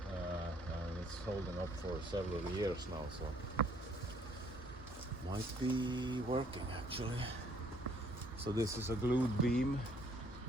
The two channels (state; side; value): normal; both; correlation 0.63